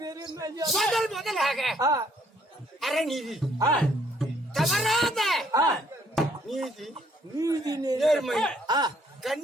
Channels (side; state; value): both; normal; correlation 0.65